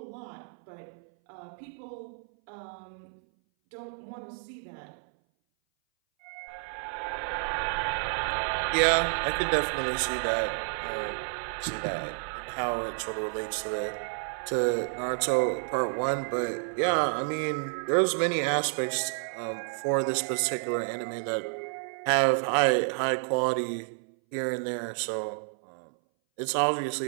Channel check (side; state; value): left; silent; 58 dB below the other